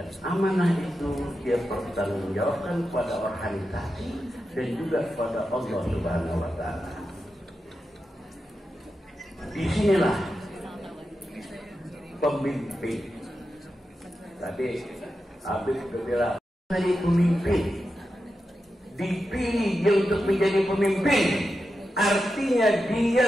amanah itu dia pertanggungjawabkan pada organisasi dan juga kepada Allah Subhanahu wa Ta'ala. Disinilah pemimpin. Tadi Habib bilang jadi pemimpin, dipilih dia untuk menjadi pemimpin, artinya dia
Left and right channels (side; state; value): both; normal; correlation 0.89